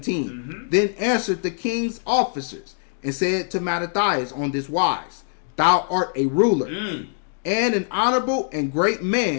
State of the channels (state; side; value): silent; right; digital silence